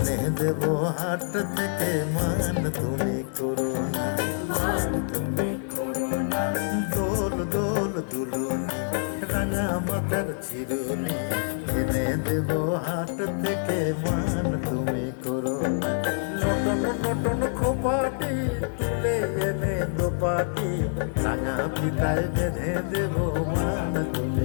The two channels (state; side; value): silent; right; digital silence